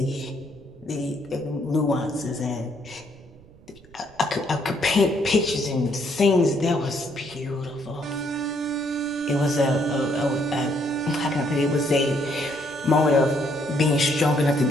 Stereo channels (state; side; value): noise; right; rumble, 24 dB below the sound